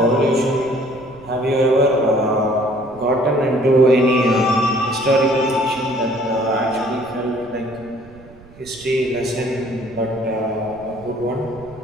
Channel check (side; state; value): right; noise; rumble, 22 dB below the sound